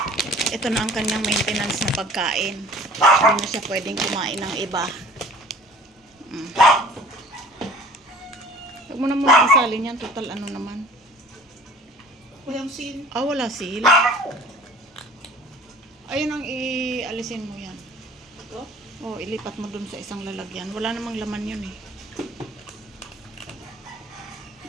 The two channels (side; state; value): both; normal; correlation 0.47